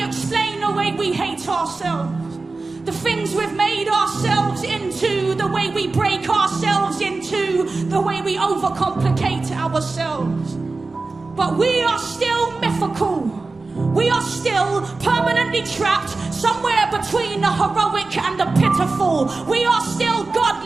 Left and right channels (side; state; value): left; quieter; 3.7 dB